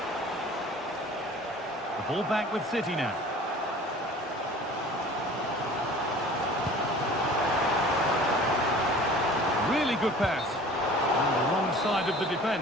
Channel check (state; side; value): normal; both; correlation 0.45